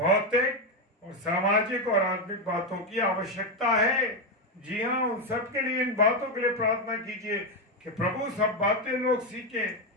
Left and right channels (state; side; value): normal; both; correlation 0.07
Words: और सामाजिक और आत्मिक बातों की आवश्यकता है। जी हाँ, उन सब के लिए, इन बातों के लिए प्रार्थना कीजिए कि प्रभु सब बातें लोग सीखें।